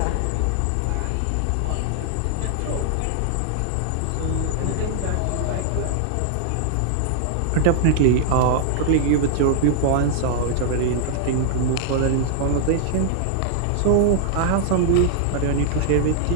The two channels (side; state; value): both; different; correlation 0.00